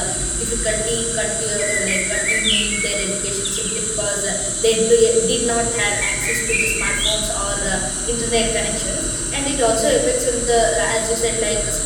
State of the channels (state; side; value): identical; both; correlation 1.00